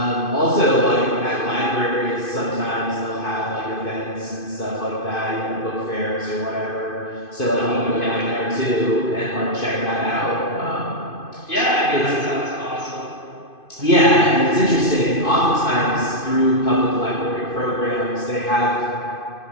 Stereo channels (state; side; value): late; right; 2.5 ms